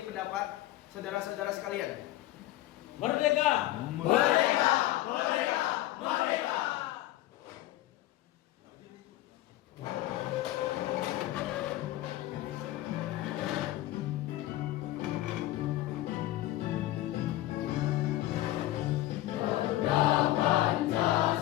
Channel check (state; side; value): quieter; right; 15.6 dB